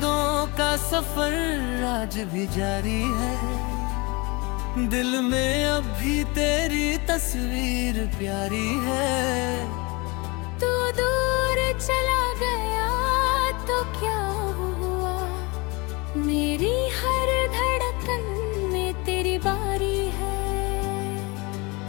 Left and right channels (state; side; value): quieter; right; 26.8 dB